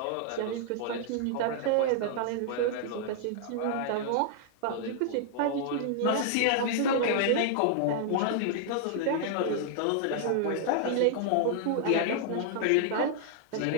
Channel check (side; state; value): both; different; correlation -0.01